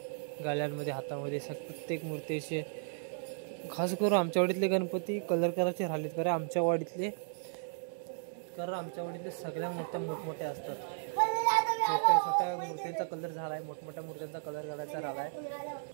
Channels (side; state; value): left; silent; digital silence